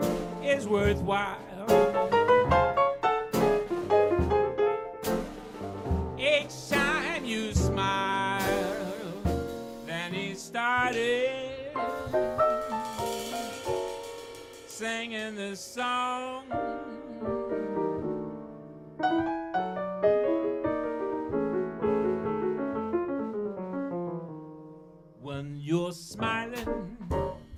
is worthwhile. Each time you smile, then he started singing this song. When you're smiling,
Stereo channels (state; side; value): identical; both; correlation 1.00